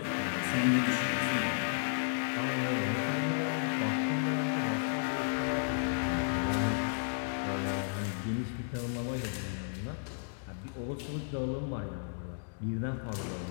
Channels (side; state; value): right; silent; digital silence